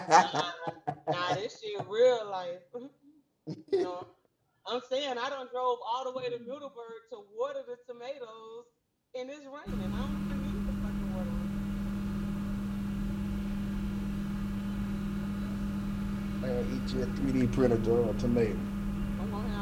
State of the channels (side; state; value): both; identical; correlation 1.00